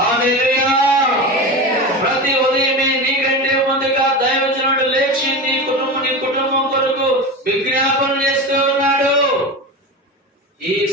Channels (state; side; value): normal; both; correlation 0.25